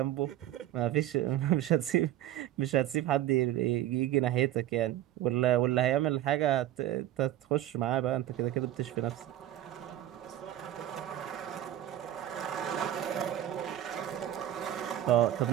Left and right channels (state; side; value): quieter; left; 12.7 dB